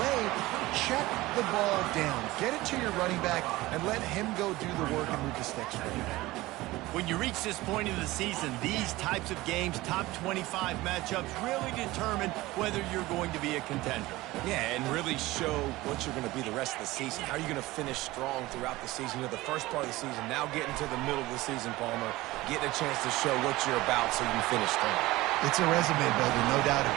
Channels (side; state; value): left; quieter; 18.9 dB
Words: check the ball down. Get it to your running back and let him go do the work and move the sticks for you. When you reach this point of the season, these types of games, top 25 matchups, really determine whether you're going to be a contender. Yeah, and really show what you're going to be the rest of the season. How are you going to finish strong throughout the season? You know, the first part of the season, now getting to the middle of the season, Palmer, getting a chance to show what you're about so you can finish strong. It's a resume builder, no doubt